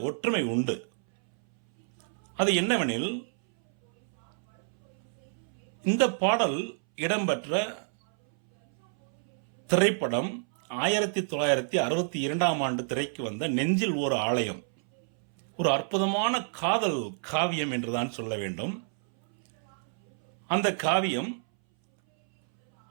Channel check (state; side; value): silent; left; 59 dB below the other